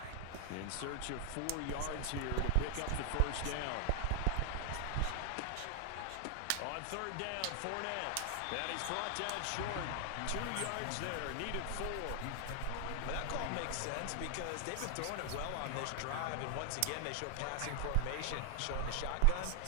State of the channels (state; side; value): different; both; correlation 0.00